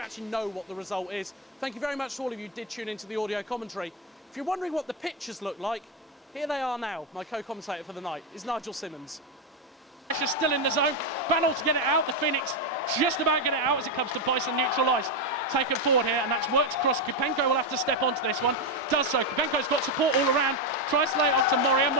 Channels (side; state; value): both; normal; correlation 0.07